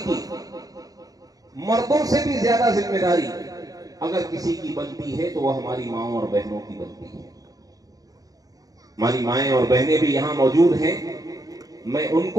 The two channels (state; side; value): late; left; 0.18 ms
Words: کی مردوں سے بھی زیادہ ذمہ داری اگر کسی کی بنتی ہے تو وہ ہماری ماؤں اور بہنوں کی بنتی ہے۔ ہماری مائیں اور بہنیں بھی یہاں موجود ہیں، میں ان